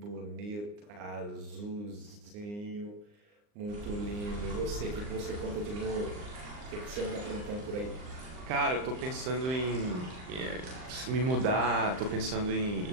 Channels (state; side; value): late; left; 39 ms